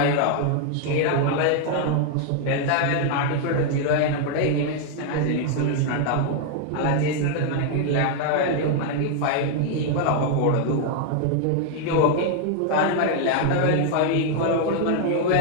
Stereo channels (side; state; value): both; different; correlation 0.00